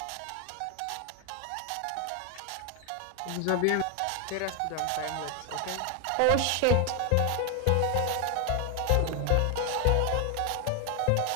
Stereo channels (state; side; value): different; both; correlation 0.01